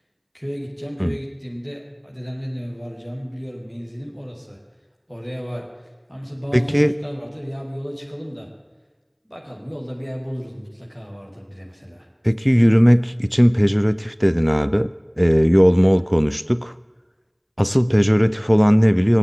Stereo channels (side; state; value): both; identical; correlation 1.00